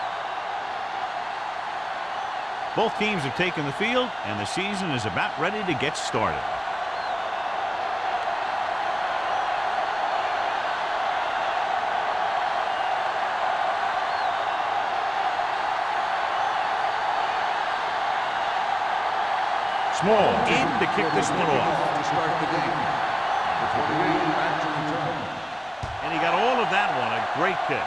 Both teams have taken the field, and the season is about ready to get started. Small in to kick this one off. To start the game. Back to return. And he got all of that one. A great kick.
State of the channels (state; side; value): identical; both; correlation 1.00